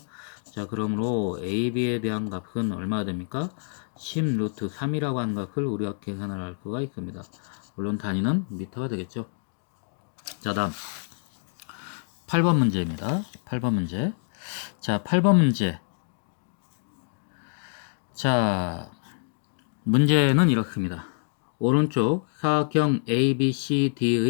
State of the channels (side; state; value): right; silent; digital silence